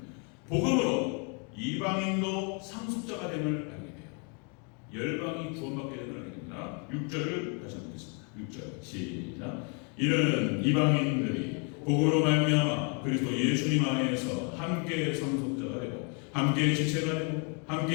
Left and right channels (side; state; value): right; quieter; 36.7 dB